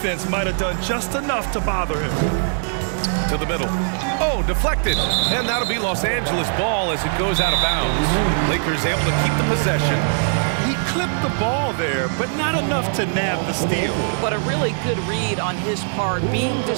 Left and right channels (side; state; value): left; silent; 65 dB below the other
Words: might have done just enough to bother him. To the middle. Oh, deflected. And that'll be Los Angeles ball as it goes out of bounds. Lakers able to keep the possession. He clipped the ball there, but not enough to nab the steal. But a really good read on his part, being